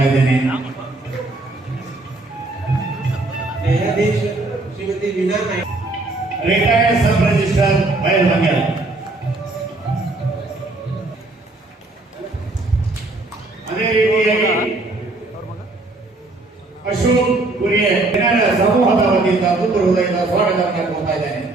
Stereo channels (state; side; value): quieter; left; 3.0 dB